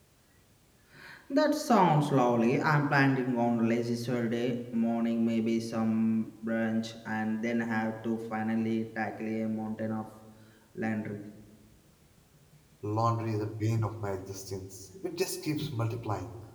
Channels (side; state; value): both; identical; correlation 1.00